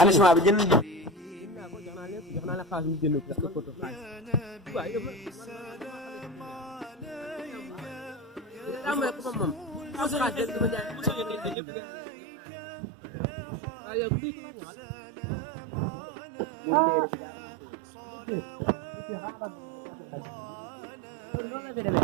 anaciment bi jënd jox naa la xaalis mu jënd parce que photo xaalis waaw yow moom xaalis dama jaay waaw yow lii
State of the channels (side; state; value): left; drops out; at 11.6 s